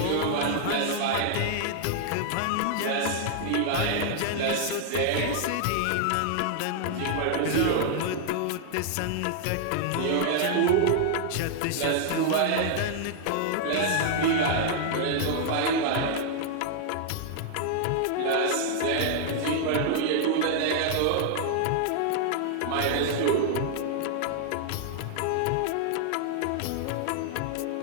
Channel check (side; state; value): both; different; correlation -0.01